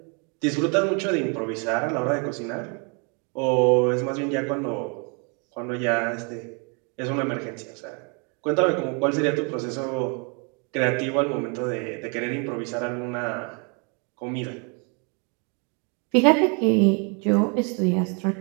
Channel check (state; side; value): quieter; left; 35.5 dB